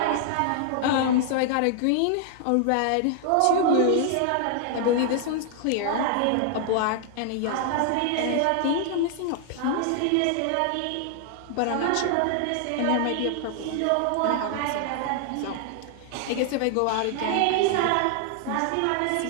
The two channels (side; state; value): both; different; correlation 0.00